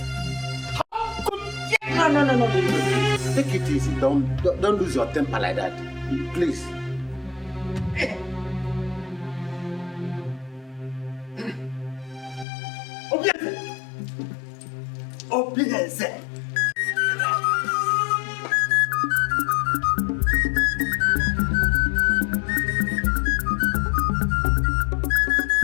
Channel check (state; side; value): drops out; right; at 12.5 s